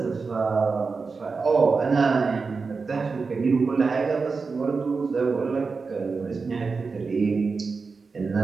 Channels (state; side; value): quieter; left; 4.6 dB